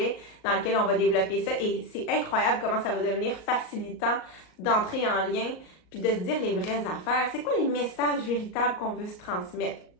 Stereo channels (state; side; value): late; right; 38 ms